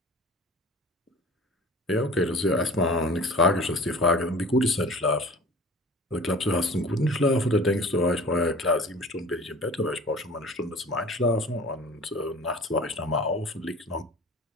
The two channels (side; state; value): both; normal; correlation 0.42